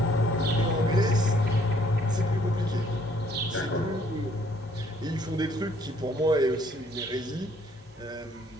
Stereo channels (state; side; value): normal; both; correlation 0.64